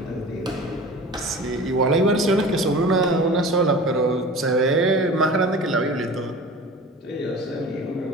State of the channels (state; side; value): normal; both; correlation 0.38